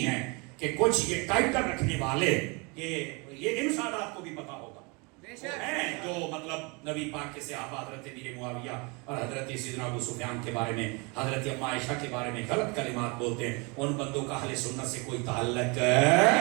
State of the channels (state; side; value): quieter; left; 29.8 dB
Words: ہیں کہ کچھ یہ ٹائٹل رکھنے والے یہ ان سادات کو بھی پتا ہوگا ہیں جو مطلب نبی پاک کے صحابہ حضرت امیر معاویہ اور حضرت سیدنا ابو سفیان کے بارے میں حضرت ام عائشہ کے بارے میں غلط کلمات بولتے ہیں ان بندوں کا اہل سنت سے کوئی تعلق